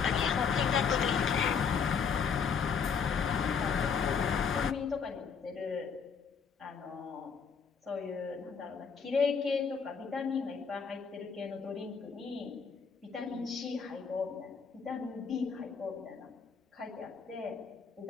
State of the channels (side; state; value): right; quieter; 6.1 dB